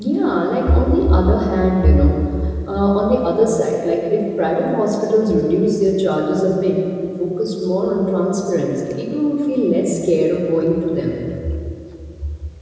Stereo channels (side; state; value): both; identical; correlation 1.00